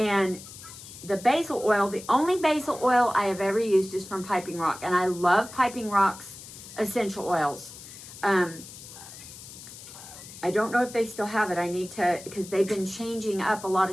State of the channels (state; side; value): noise; left; hiss, 15 dB below the sound